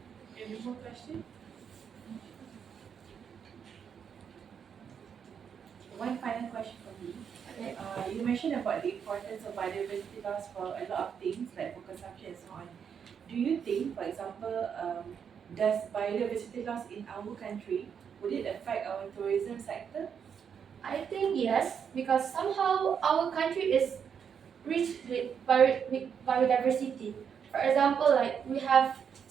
Any more question? One final question from me. Okay. You mentioned about the importance of biodiversity loss for a lot of things like for consumption and so on. Do you think, for example, does biodiversity loss in our country, would it affect our tourism sector? I think yes, because somehow our country is rich with biodiversity. For example, like we have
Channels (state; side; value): quieter; left; 7.4 dB